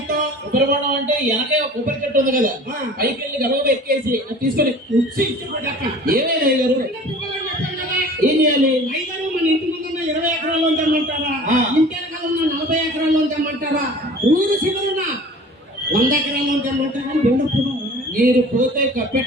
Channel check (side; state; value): both; normal; correlation 0.44